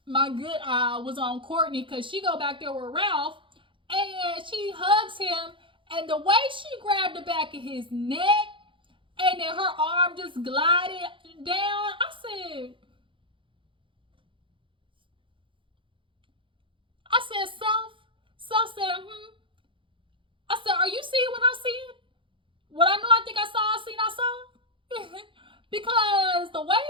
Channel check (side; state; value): left; late; 0.25 ms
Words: my good eye was on Courtney, because she go back there with Ralph and she hugs him, and the way she grabbed the back of his neck and then her arm just glided down, I said, Self said, I said, are you seeing what I see? What I know I think I saw, I saw. Because the way